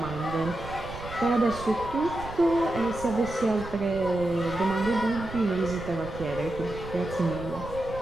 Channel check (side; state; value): right; noise; rumble, 12 dB below the sound